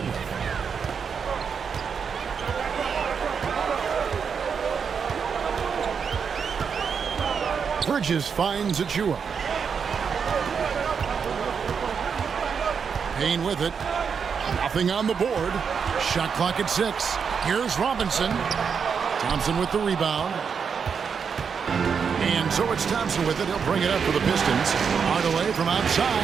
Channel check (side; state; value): left; quieter; 6.4 dB